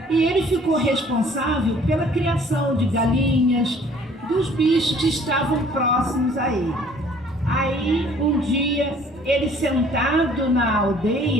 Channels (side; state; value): both; normal; correlation 0.56